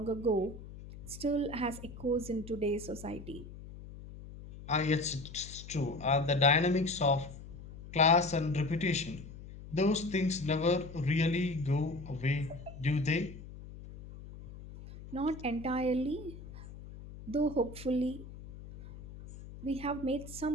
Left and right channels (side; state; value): left; noise; hum, 14 dB below the sound